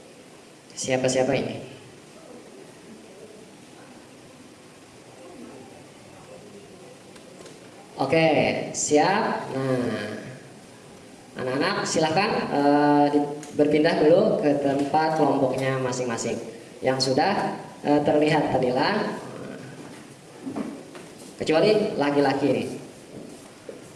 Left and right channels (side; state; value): both; identical; correlation 1.00